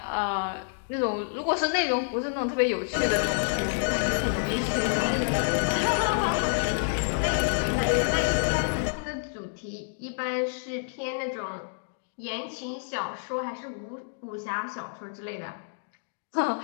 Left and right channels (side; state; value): right; silent; digital silence